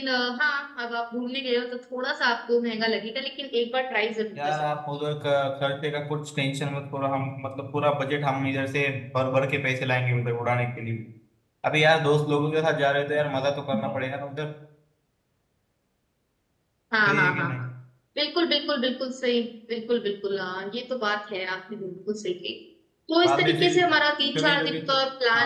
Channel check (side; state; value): both; identical; correlation 1.00